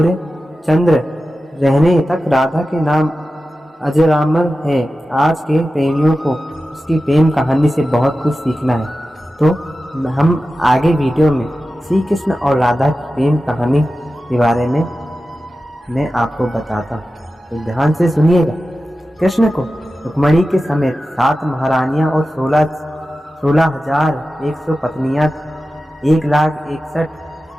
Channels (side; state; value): both; normal; correlation 0.94